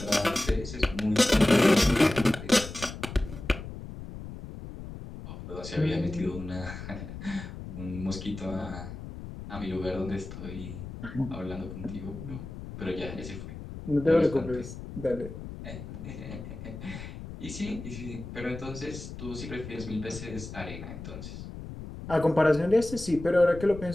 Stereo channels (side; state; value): left; noise; rumble, 11 dB below the sound